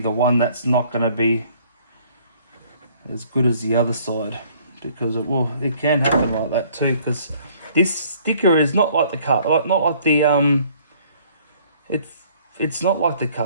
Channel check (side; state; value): both; inverted; correlation -0.58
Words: one that's not going to be as good as the other side, because it can happen like that too, because this sticker is not like the it's not like the